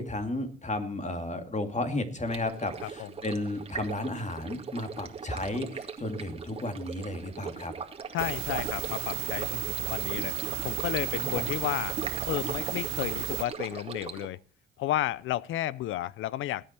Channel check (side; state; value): both; normal; correlation 0.22